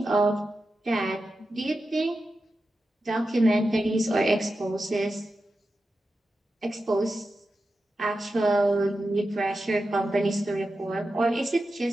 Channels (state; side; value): normal; both; correlation 0.91